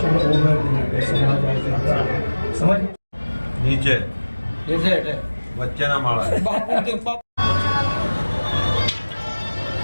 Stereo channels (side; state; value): both; inverted; correlation -1.00